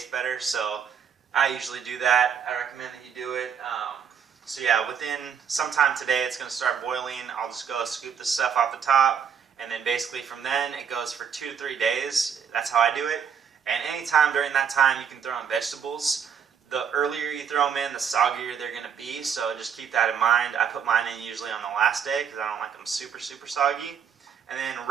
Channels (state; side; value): quieter; left; 7.4 dB